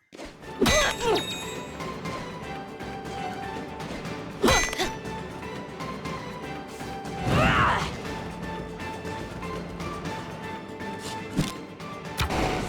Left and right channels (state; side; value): identical; both; correlation 1.00